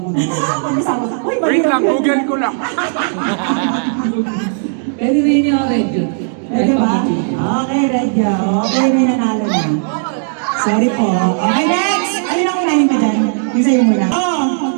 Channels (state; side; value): silent; left; digital silence